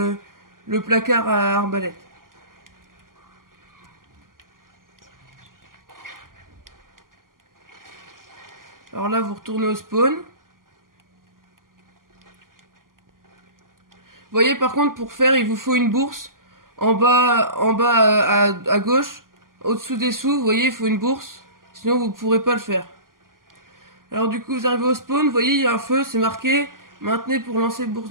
placard à arbalète. Alors là, vous retournez au spawn. Vous voyez, par contre, pour faire, il vous faut une bourse. En bas à gauche, au-dessous des sous, vous voyez, il faut une bourse. Sinon, vous ne pourrez pas le faire. Alors du coup, vous arrivez au spawn, vous voyez, il y a un feu, c'est marqué « Maintenez pour lancer bourse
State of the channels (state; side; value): late; left; 0.91 ms